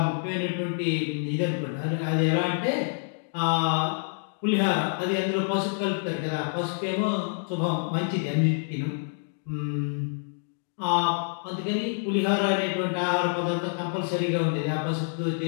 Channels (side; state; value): right; silent; digital silence